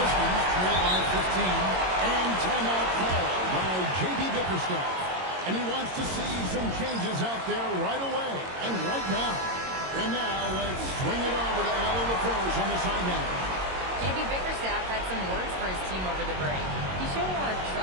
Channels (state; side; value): late; left; 22 ms